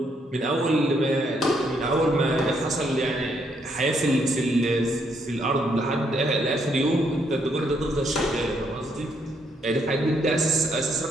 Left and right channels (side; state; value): both; normal; correlation 0.73